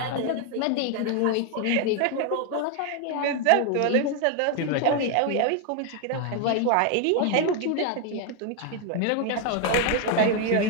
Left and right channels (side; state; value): both; different; correlation 0.01